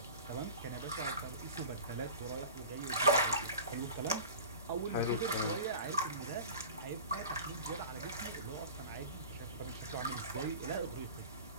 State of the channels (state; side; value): inverted; both; correlation -0.36